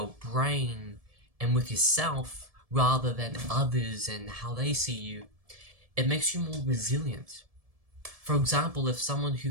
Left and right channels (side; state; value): left; late; 1.7 ms